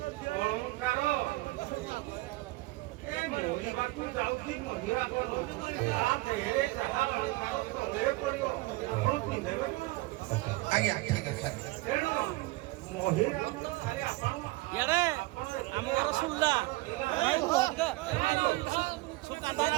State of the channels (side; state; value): left; quieter; 21.0 dB